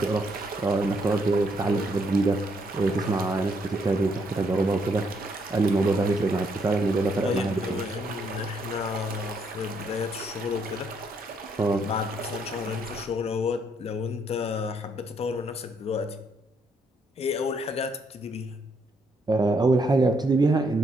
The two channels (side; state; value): both; normal; correlation 0.73